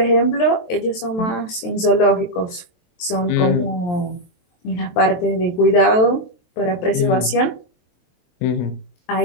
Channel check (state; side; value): late; right; 23 ms